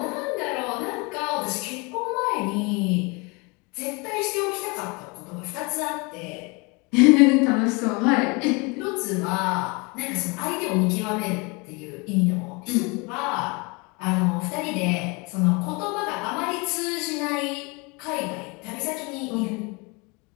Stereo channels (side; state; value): right; quieter; 28.9 dB